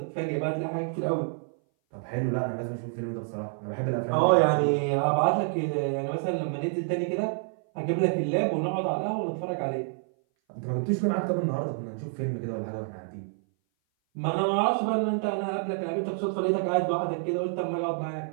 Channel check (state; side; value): silent; left; 58 dB below the other